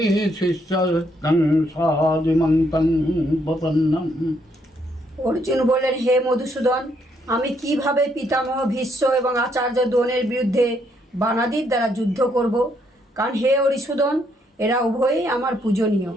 शिष्यस्तं सादिमन्तं प्रपन्नम्। অর্জুন বললেন, হে মধুসূদন, আমি কিভাবে পিতামহ ভীষ্ম এবং আচার্য দ্রোণের বিরুদ্ধে বানাদির দ্বারা যুদ্ধ করব? কারণ হে হরিসূদন, এরা উভয়ই আমার পূজনীয়।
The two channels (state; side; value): normal; both; correlation 0.72